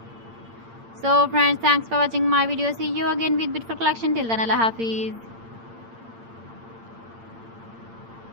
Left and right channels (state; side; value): late; left; 8.8 ms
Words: So friends, thanks for watching my video. See you again with beautiful collection. Till then, Allah Hafiz.